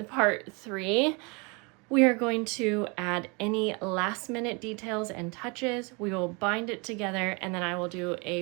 part 3, we are going to add any last minute details and touches. We will bind it together, and then I will do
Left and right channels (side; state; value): left; quieter; 30.0 dB